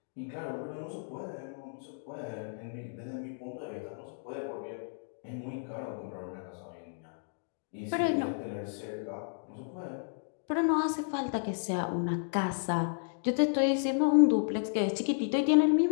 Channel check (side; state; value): right; silent; digital silence